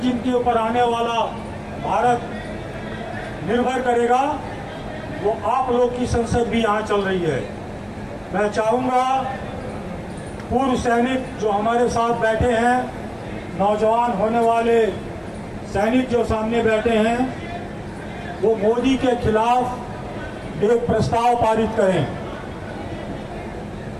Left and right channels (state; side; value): identical; both; correlation 1.00